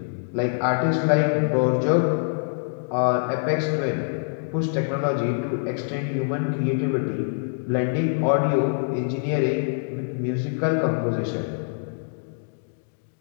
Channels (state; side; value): silent; right; digital silence